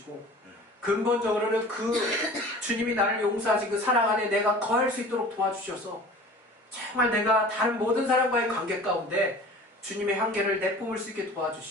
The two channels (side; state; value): both; normal; correlation 0.42